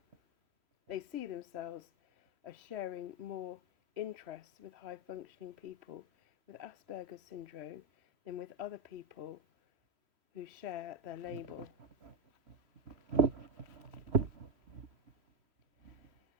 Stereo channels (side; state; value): left; late; 3.1 ms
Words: see themselves as sharing more interests with high-functioning people with Asperger's syndrome than with other people who share their label.